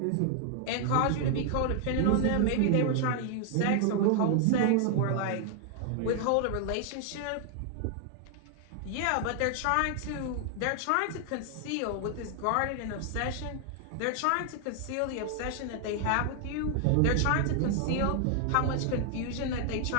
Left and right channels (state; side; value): different; both; correlation 0.00